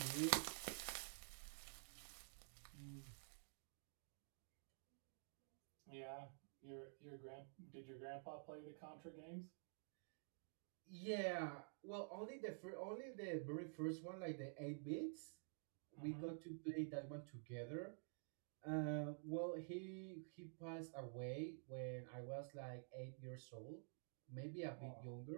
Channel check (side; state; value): left; silent; digital silence